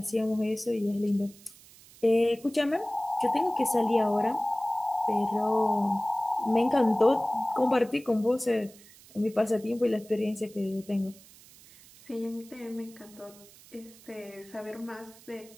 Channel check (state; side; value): noise; right; hiss, 23 dB below the sound